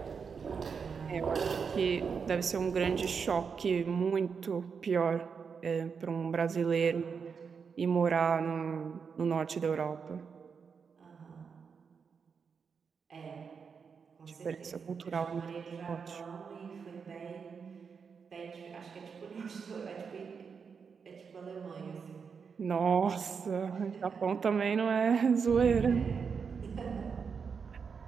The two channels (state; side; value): quieter; left; 6.0 dB